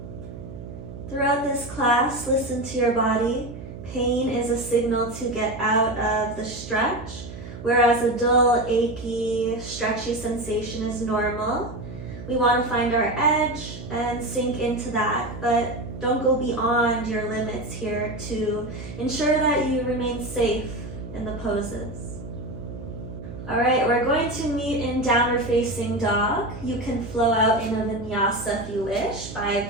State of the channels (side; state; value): right; noise; hum, 12 dB below the sound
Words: Throughout this class, listen to your body. Pain is a signal to get out of the stretch, whereas a dull, achy, stretchy sensation is normal. We want to find our edge and sink into that, but don't go beyond your limits here to ensure that you remain safe in the poses. All right, we're going to meet in downward facing dog. You can flow out in a vinyasa if you wish by